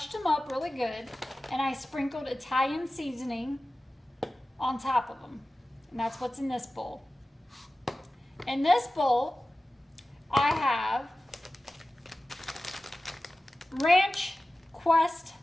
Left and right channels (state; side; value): normal; both; correlation 0.96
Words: them up really good, and I sprinkled Italian seasoning on top of them. And that's what's in this bowl. In this bowl, I have Ranch Quest